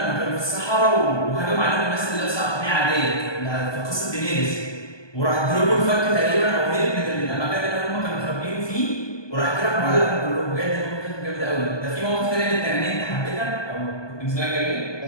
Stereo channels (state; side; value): late; right; 1.2 ms